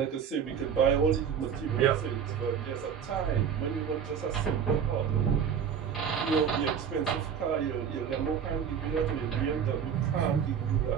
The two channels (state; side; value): quieter; left; 7.7 dB